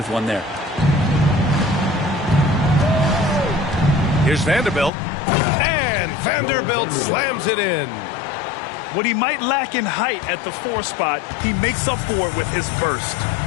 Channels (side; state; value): right; drops out; at 4.9 s